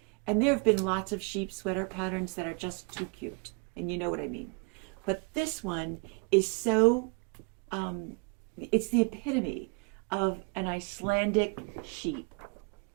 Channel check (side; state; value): left; quieter; 33.8 dB